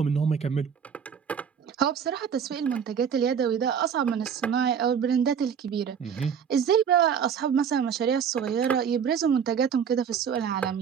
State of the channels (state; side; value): quieter; left; 7.5 dB